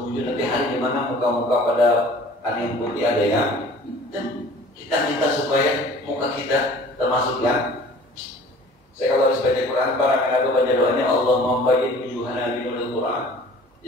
wujuh, nanti hari di mana muka-muka pada ada yang putih ada yang hitam. Kita minta supaya muka kita termasuk yang, saya kalau harus baca Quran, para mengaku baca doanya Allah membayyin wujuhana binuril Quran.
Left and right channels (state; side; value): normal; both; correlation 0.48